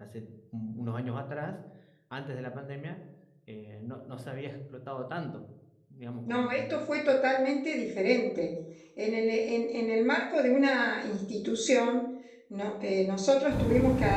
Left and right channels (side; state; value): both; identical; correlation 1.00